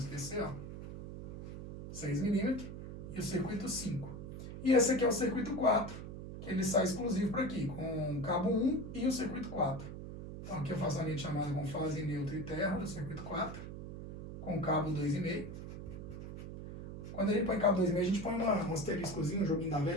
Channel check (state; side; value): noise; right; hum, 9 dB below the sound